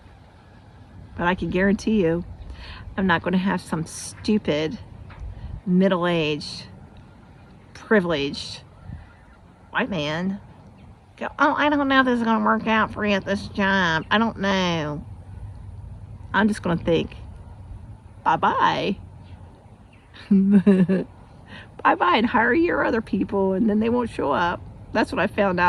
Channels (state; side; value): identical; both; correlation 1.00